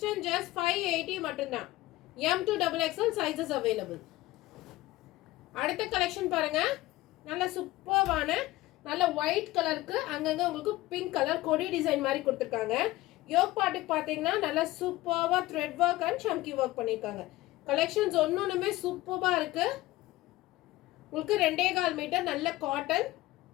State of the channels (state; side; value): quieter; right; 18.0 dB